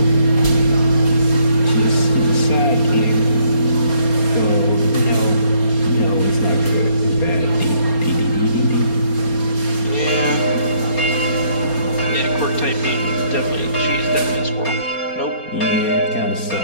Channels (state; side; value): late; right; 4.3 ms